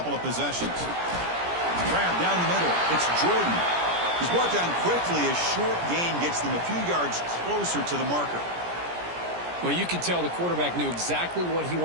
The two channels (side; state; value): left; late; 17 ms